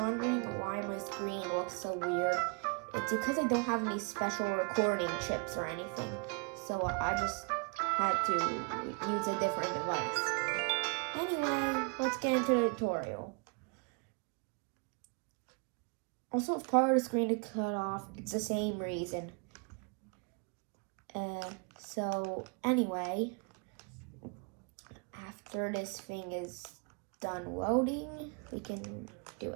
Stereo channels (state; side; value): quieter; left; 35.9 dB